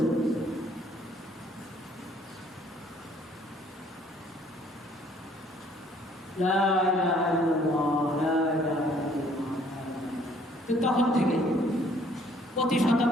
লা ইলাহা ইল্লাল্লাহ, লা ইলাহা ইল্লাল্লাহ। তো তখন থেকে প্রতি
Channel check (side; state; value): both; normal; correlation 0.61